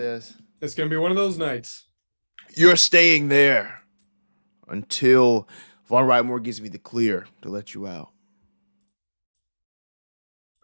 It's gonna be one of those nights. you're staying there until Von Reitmore gives me the clear to let you out.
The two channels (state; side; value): inverted; both; correlation -1.00